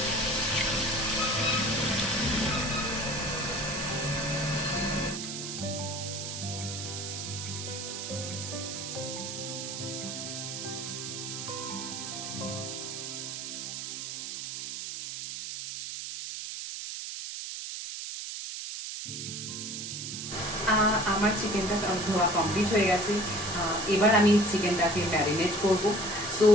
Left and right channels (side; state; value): right; noise; hiss, 6 dB below the sound